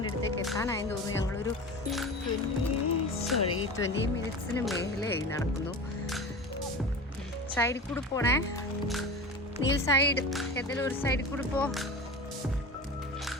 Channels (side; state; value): both; normal; correlation 0.31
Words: അടുത്തേക്ക് എത്താനായെന്ന് തോന്നുന്നു. ഞങ്ങളൊരു 20 മിനിറ്റ്സിന് മേലെയായി നടക്കുന്നു. സൈഡിൽ കൂടെ പോണേ. നീൽ സൈഡ് ഏതെങ്കിലും ഒരു സൈഡിൽ കൂടെ പോ.